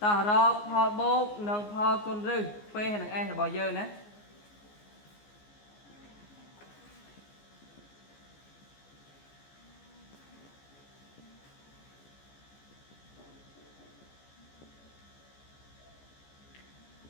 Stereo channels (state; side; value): late; right; 14 ms